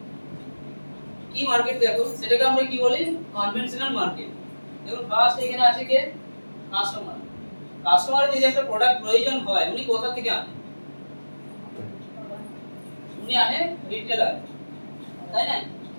কি মার্কেট দেখো সেটাকে আমরা কি বলি, কনভেনশনাল মার্কেট। দেখুন ফার্স্ট এখানে আছে কে, কাস্টমার। কাস্টমারের যদি একটা প্রোডাক্ট প্রয়োজন হয় উনি কোথা থেকে আনেন, উনি আনে রিটেলার, তাই না?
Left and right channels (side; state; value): both; inverted; correlation -1.00